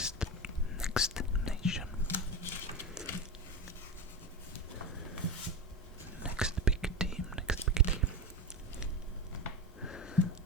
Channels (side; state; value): both; normal; correlation 0.21